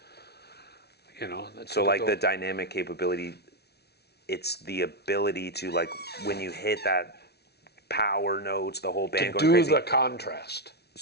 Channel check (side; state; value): right; late; 0.48 ms